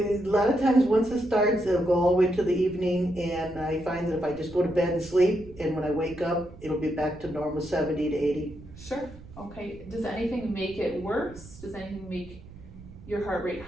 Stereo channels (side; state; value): right; noise; rumble, 18 dB below the sound